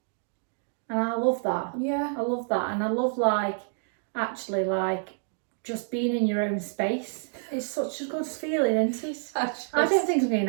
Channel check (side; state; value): left; silent; 59 dB below the other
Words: And I love that. Yeah. I love that. And I love, like, actually, like, just being in your own space. It's such a good feeling, isn't it? I don't think I'm going